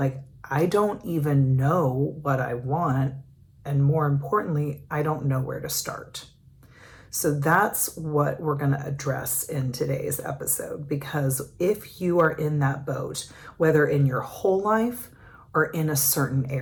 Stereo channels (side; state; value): both; identical; correlation 1.00